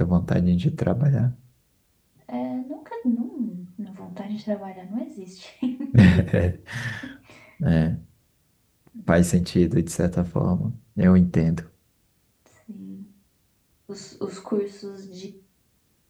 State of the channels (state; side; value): identical; both; correlation 1.00